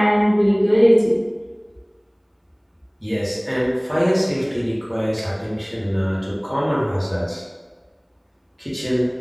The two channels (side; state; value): both; identical; correlation 1.00